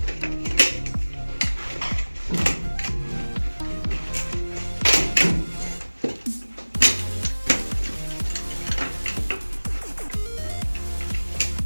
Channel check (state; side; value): inverted; both; correlation -1.00